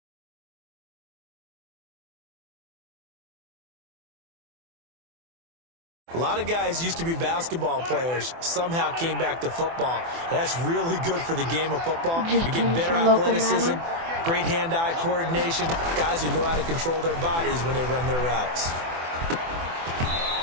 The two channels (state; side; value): late; left; 24 ms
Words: A lot of guys used to be basketball players, somehow came back to football. That's really good for the game of football. You're getting better athleticism, great hand-eye coordination, guys who know how to control their bodies when they run their routes.